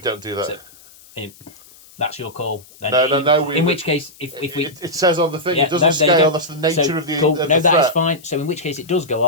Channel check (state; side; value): noise; left; hiss, 24 dB below the sound